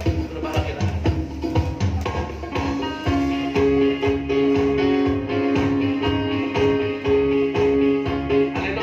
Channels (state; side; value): identical; both; correlation 1.00